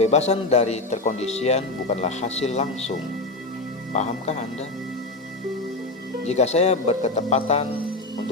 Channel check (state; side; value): quieter; right; 3.0 dB